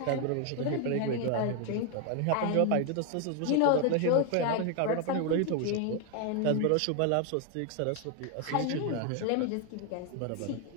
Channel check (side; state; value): both; different; correlation 0.01